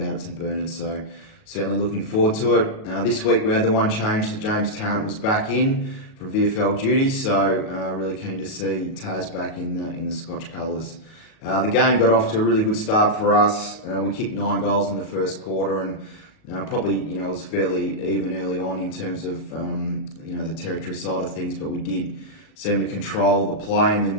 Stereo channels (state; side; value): late; right; 37 ms